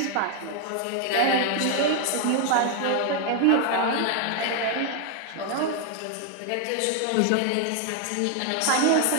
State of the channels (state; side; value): different; both; correlation 0.00